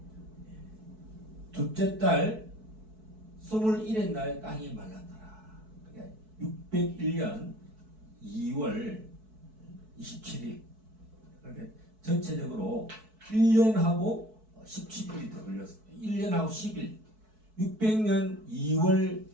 둘째 달 21의 날에 땅이 말랐더라. 그러니까 601년 2월 27일 그러니까 전체적으로 1년하고 17일이 더 걸렸습니다. 1년하고 10일 600년 2월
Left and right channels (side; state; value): left; late; 4.6 ms